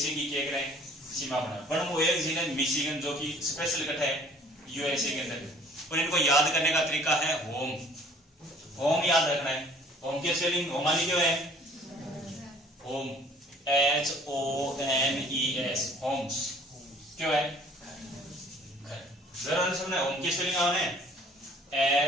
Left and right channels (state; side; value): normal; both; correlation 0.54